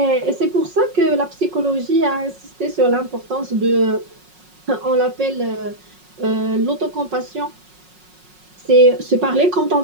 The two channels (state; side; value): late; left; 5.5 ms